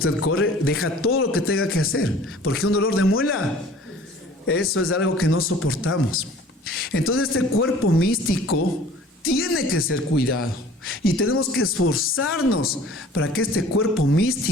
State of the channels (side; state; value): both; normal; correlation 0.48